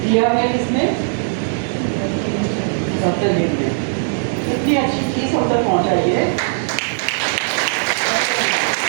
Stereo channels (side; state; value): left; silent; 67 dB below the other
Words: दिया है इसमें डॉक्टर ने इतनी अच्छी चीज़ हम तक पहुँचाई है।